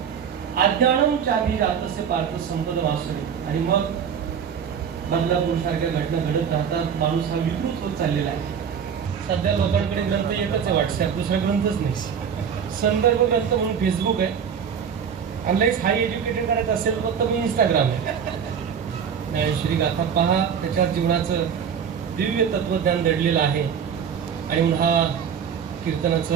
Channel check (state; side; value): quieter; left; 7.5 dB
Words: अज्ञानम चाभिजातस्य पार्थ संपद वासुरे. आणि मग बदलापूर सारख्या घटना घडत राहतात. माणूस हा विकृत होत चाललेला आहे. सध्या लोकांकडे ग्रंथ एकच आहे, व्हॉट्सअप, दुसरा ग्रंथच नाही. संदर्भ ग्रंथ म्हणून फेसबुक आहे. अनलाईस हाय एज्युकेटेड करायचं असेल फक्त मी इंस्टाग्राम आहे. श्री गाथा पहा, त्याच्यावर जीवनाचं दिव्य तत्वज्ञान दडलेलं आहे. आणि म्हणून हा